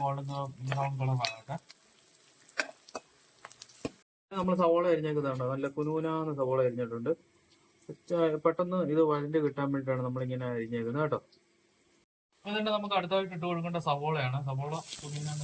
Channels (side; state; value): both; identical; correlation 1.00